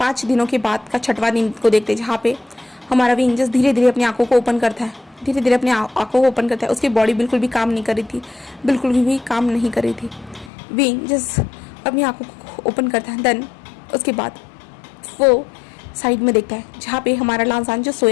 दिनों के बाद का 6वां दिन को देखते हैं, जहाँ पे हमारा विंग जस्ट धीरे धीरे अपनी आंखों को ओपन करता है, धीरे धीरे अपनी आंखों को ओपन करता है। उसकी बॉडी बिल्कुल भी काम नहीं कर रही थी, बिल्कुल भी काम नहीं कर रही थी। विंग जस्ट अपनी आंखों को ओपन करता है। देन उसके बाद वो साइड में देखता है, जहाँ पे हमारा लांसान जो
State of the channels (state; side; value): drops out; right; at 10.5 s